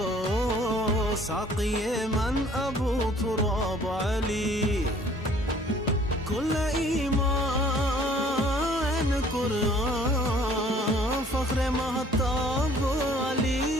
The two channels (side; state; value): both; normal; correlation 0.55